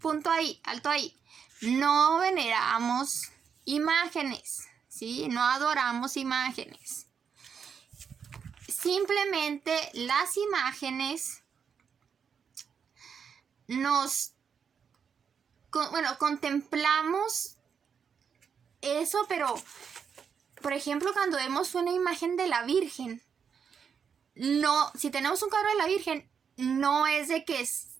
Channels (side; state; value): left; quieter; 6.8 dB